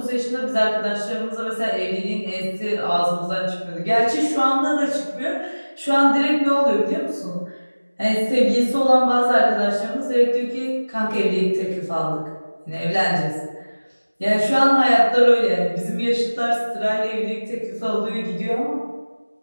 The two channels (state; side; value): inverted; both; correlation -1.00